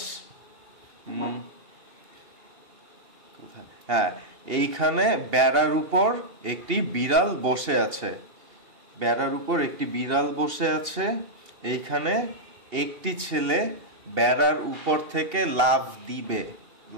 হ্যাঁ, এইখানে বেড়ার উপর একটি বিড়াল বসে আছে। বেড়ার উপর একটি বিড়াল বসে আছে। এইখানে একটি ছেলে বেড়ার উপর থেকে লাফ দিবে।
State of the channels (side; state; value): left; late; 2.8 ms